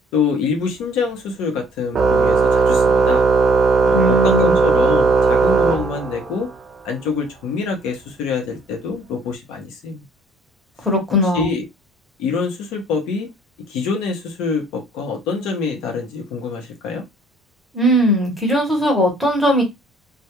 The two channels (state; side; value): normal; both; correlation 0.61